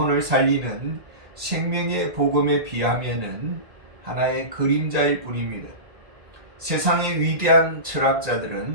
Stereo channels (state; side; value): late; left; 1.9 ms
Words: 살리는 생명의 복음에 비하면은 하나의 그림자일 뿐입니다. 세상의 위대한